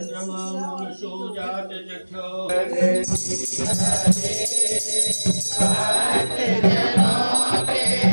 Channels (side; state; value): both; inverted; correlation -1.00